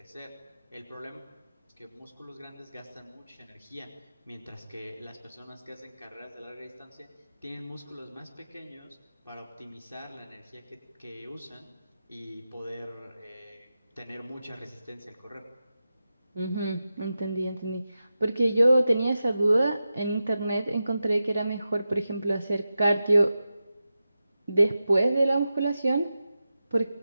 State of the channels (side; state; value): both; inverted; correlation -0.91